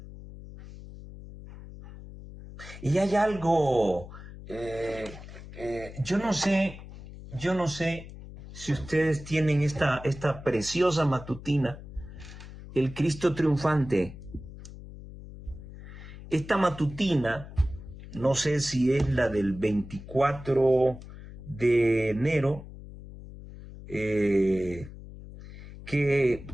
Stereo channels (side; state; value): left; noise; hum, 14 dB below the sound